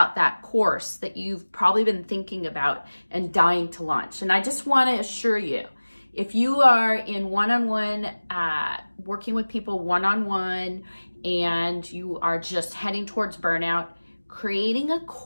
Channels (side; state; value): both; inverted; correlation -1.00